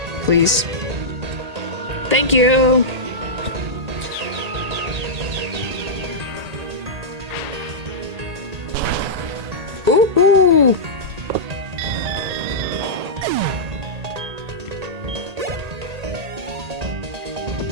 Please. Thank you. Ooh, ooh.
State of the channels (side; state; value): left; late; 1.8 ms